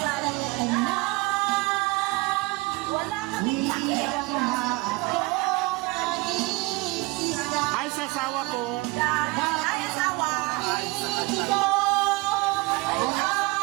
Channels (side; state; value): left; quieter; 23.8 dB